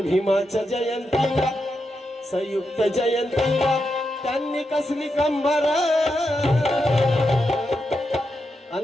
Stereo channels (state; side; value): normal; both; correlation 0.86